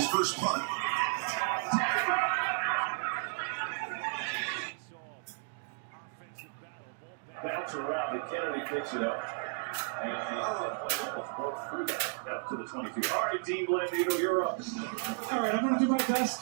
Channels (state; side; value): silent; left; digital silence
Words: first punt. Bounce around, and Kennedy picks it up. And both three guys out to the 22. All right, Dean Blandino, you're up. All right, I'm going to do my best